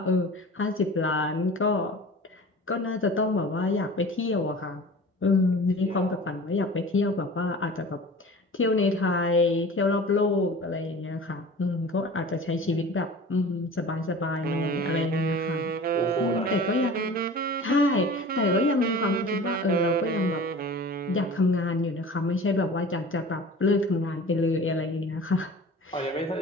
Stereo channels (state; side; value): normal; both; correlation 0.40